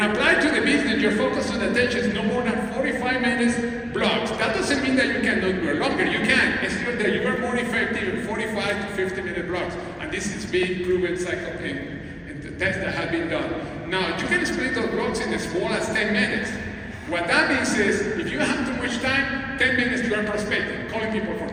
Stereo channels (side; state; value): both; identical; correlation 1.00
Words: applied to the business, your focus and attention is no more than 45 minutes blocks. That doesn't mean that you cannot do it longer. You can. It's just that you are more effective in 45 to 50-minute blocks. And this is being proven in the tests that have been done. Now, you can split those blocks in as small as 10 minutes. What that means is, if you have too much time, 10 minutes you are prospecting, calling people for